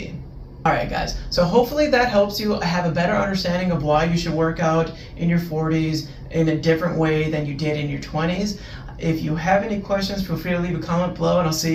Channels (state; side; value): identical; both; correlation 1.00